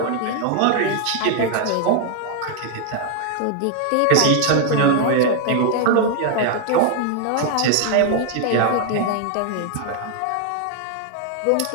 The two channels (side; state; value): both; different; correlation 0.00